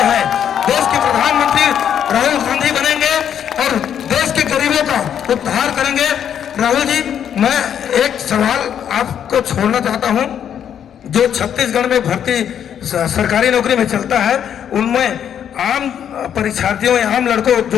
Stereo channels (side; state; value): right; quieter; 9.0 dB